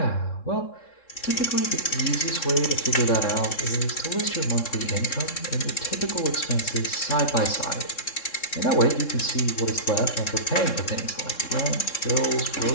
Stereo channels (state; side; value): late; right; 3.7 ms